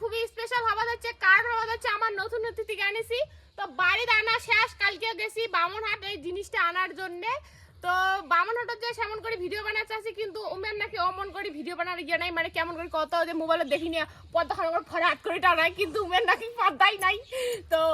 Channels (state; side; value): identical; both; correlation 1.00